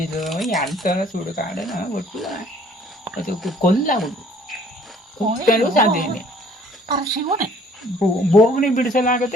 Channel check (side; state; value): both; normal; correlation 0.58